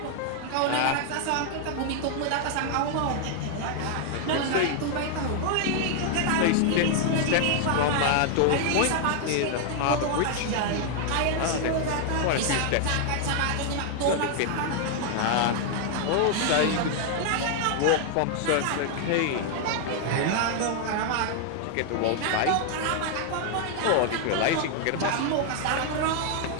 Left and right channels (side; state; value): both; different; correlation 0.00